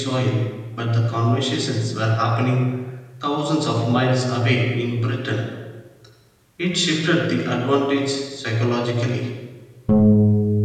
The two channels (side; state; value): both; identical; correlation 1.00